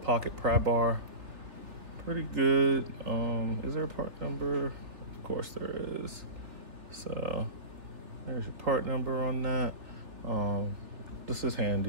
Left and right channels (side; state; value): left; late; 3.2 ms